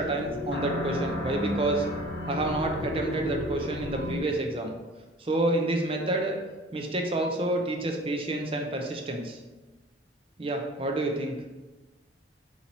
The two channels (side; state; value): both; normal; correlation 0.45